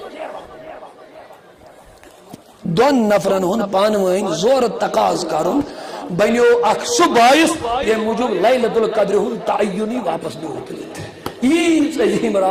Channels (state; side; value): identical; both; correlation 1.00